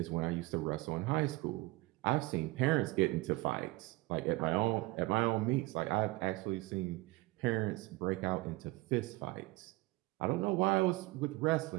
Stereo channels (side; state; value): left; quieter; 21.3 dB